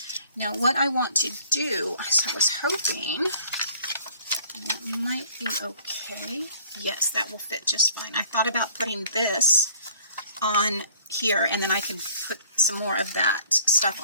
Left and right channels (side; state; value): both; inverted; correlation -0.56